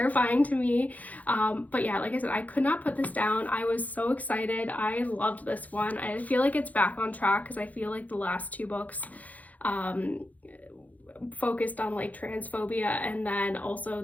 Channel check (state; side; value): late; right; 0.076 ms